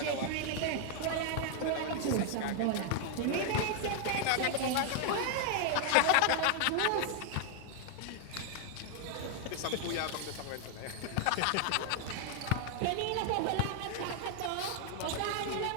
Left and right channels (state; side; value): different; both; correlation 0.00